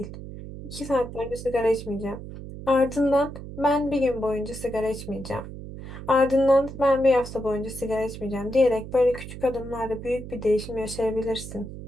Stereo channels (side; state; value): right; noise; hum, 11 dB below the sound